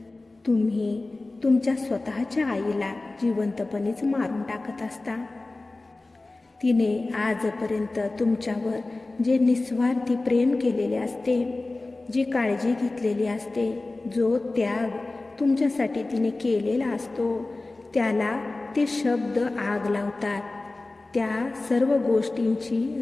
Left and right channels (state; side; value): quieter; right; 3.1 dB